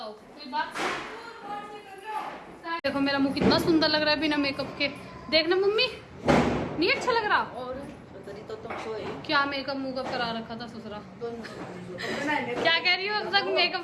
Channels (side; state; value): both; identical; correlation 1.00